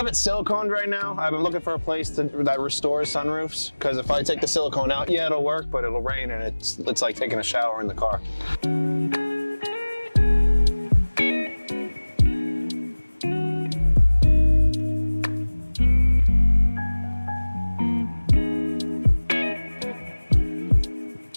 it siliconed right now. I've been looking for a place that restores sunroofs, because if I take the silicone out, yeah, it'll work, but it'll rain and it's like taking a shower in the car.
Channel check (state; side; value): inverted; both; correlation -1.00